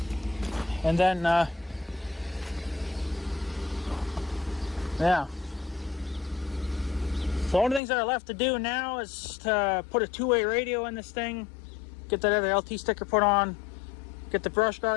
And then, yeah. So the only things that are left to do now is to put a two-way radio in this thing, get that other LT sticker put on, get the brush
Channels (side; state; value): right; drops out; at 7.8 s